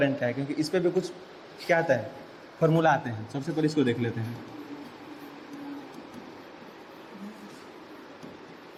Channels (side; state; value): both; identical; correlation 1.00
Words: क्या है, क्योंकि इस पर भी कुछ क्या आता है, फॉर्मूला आते हैं। सबसे पहले इसको देख लेते हैं।